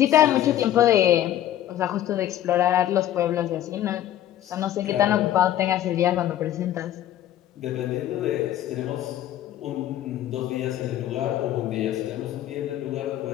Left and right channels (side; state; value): right; quieter; 12.3 dB